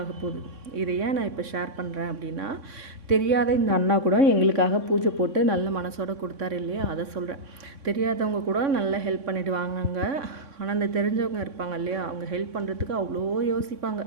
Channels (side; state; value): left; late; 3.6 ms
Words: போகுது. இதை ஏன் நான் இப்போ ஷேர் பண்ணுறேன் அப்படின்னா, தெரியாத இந்த அண்ணா கூட எங்களுக்காக பூஜை போட்டு நல்ல மனசோட கொடுத்தாரு இல்லையா, அதை சொல்கிறேன். தெரியாதவங்க கூட நல்லா ஹெல்ப் பண்ணிட்டு வாங்க. ஆனால் அந்த தெரிஞ்சவங்க இருப்பாங்க இல்லையா, அவங்க ஹெல்ப் பண்ணுறதுக்கு அவ்வளோ யோசிப்பாங்க.